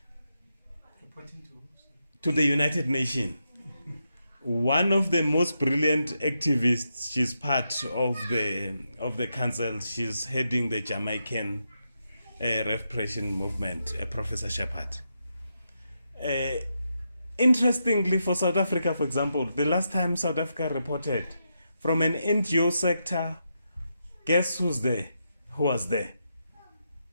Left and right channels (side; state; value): both; inverted; correlation -0.84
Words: to the United Nations. One of the most brilliant activists, she's part of the council, she's heading the Jamaican Reparation movement, Professor Shepherd. Interestingly, for South Africa, for example, the last time South Africa reported from an NGO sector, guess who's there? Who was there?